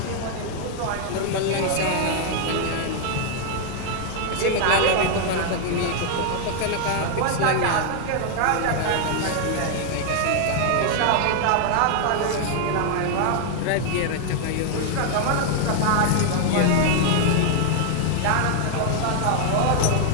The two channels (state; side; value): different; both; correlation 0.00